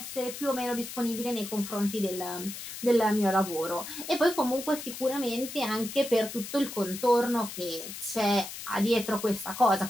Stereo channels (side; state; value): left; noise; hiss, 10 dB below the sound